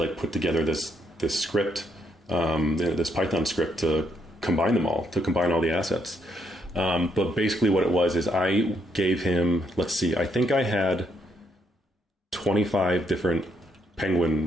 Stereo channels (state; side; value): normal; both; correlation 0.74